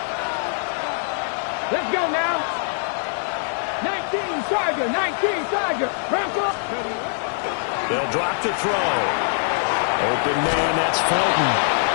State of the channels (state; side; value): silent; right; digital silence